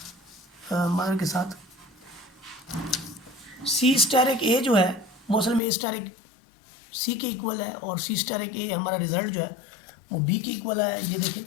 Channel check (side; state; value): right; drops out; at 5.6 s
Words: मान के साथ सी स्टार एक ए जो है वो असल में ए स्टार एक सी के इक्वल है, और सी स्टार एक ए हमारा रिजल्ट जो है वो बी के इक्वल है। ये देखें